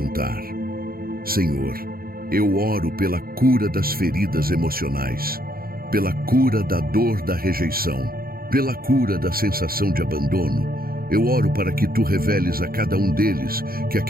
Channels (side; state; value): left; late; 0.43 ms